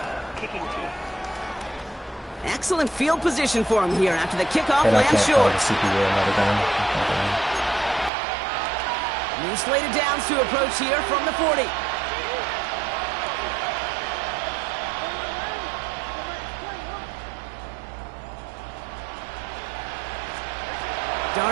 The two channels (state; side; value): drops out; left; at 8.1 s